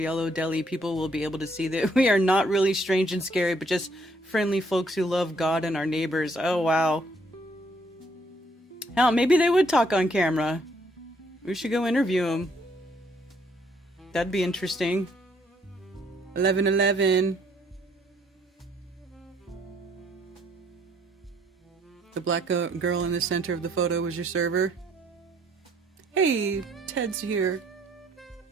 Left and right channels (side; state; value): both; normal; correlation 0.67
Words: Deli, people will be able to see that we are not really strange and scary, but just friendly folks who love God and our neighbors. Oh, wow. Hell, maybe they would talk on camera. We should go interview them. That'd be interesting. 1111. The black girl in the center of the photo was your server. Hey, Ted's here.